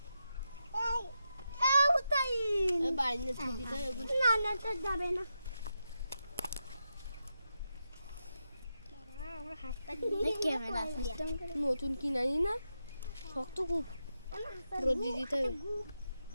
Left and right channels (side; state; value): both; inverted; correlation -0.87